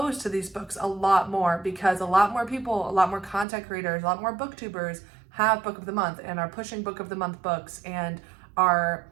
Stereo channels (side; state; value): left; drops out; at 3.5 s